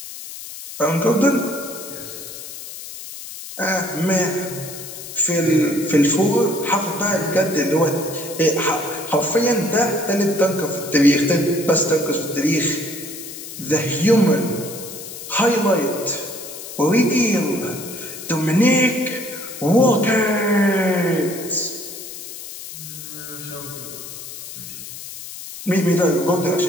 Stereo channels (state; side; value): noise; left; hiss, 12 dB below the sound